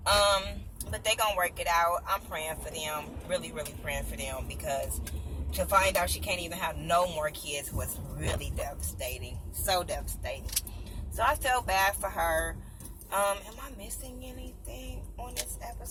But they gonna work it out. I'm praying for them, really, really praying for them, because to find out she can't even have no more kids was really devastating. So devastating. So I felt bad for her. Am I missing anything on this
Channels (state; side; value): identical; both; correlation 1.00